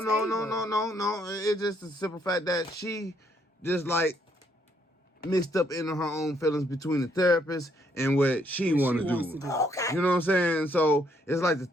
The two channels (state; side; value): normal; both; correlation 0.71